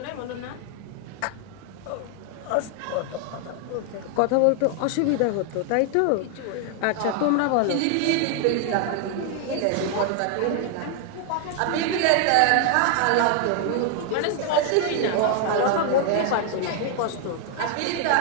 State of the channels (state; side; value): different; both; correlation 0.00